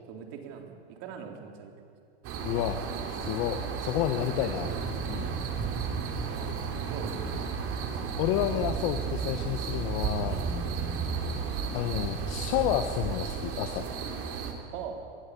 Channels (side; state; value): both; normal; correlation 0.17